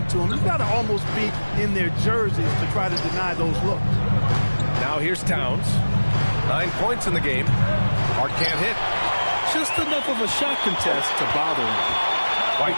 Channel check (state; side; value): inverted; both; correlation -1.00